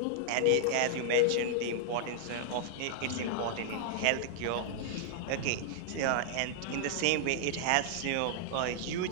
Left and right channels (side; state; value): both; different; correlation -0.01